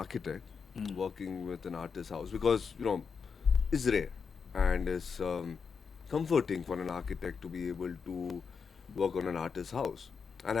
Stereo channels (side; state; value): right; quieter; 5.8 dB